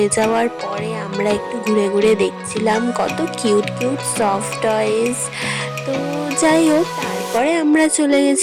যাওয়ার পরে আমরা একটু ঘুরে ঘুরে দেখছিলাম কত কিউট কিউট সফট টয়েস। তো যাই হোক, তারপরে আমরা চলে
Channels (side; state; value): both; identical; correlation 1.00